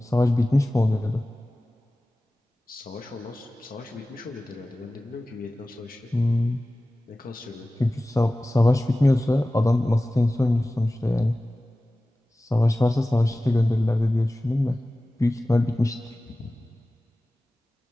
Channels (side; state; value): both; normal; correlation 0.97